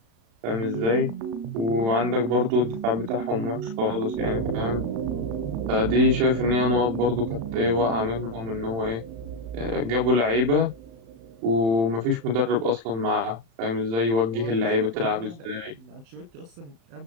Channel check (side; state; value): left; late; 35 ms